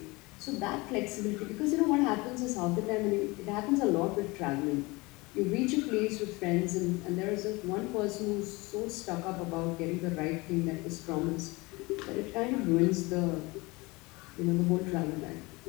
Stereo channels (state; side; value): quieter; right; 24.1 dB